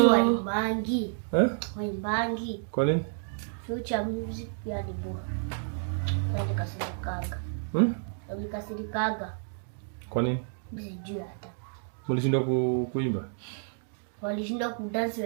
waimbangi. Waimbangi. Kwa nini? Future music ya nibo. Nikasirikaga. Kwa nini? Sijui hata. Mlishindwa kuimba? Walishindwa kudance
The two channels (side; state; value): left; silent; digital silence